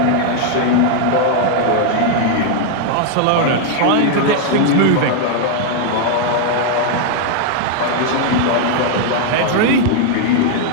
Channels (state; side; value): different; both; correlation 0.00